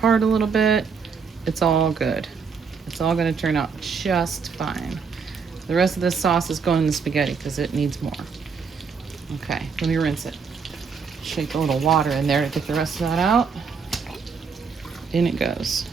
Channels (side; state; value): left; quieter; 5.6 dB